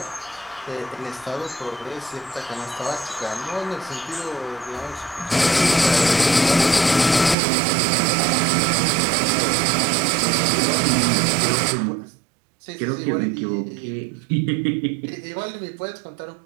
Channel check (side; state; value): left; drops out; at 7.4 s